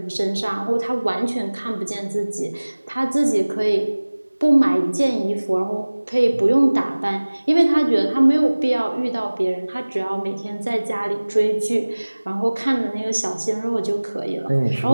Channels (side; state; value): both; inverted; correlation -1.00